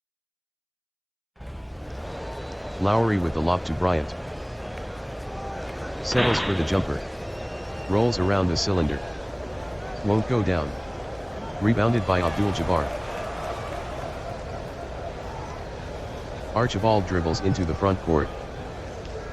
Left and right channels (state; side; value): identical; both; correlation 1.00